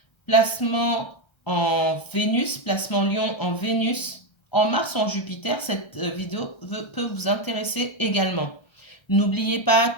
placement en Vénus, placement lion en Vénus, en Mars ou en Jupiter, cette vidéo peut vous intéresser également. N'oubliez pas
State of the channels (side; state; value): right; late; 1.3 ms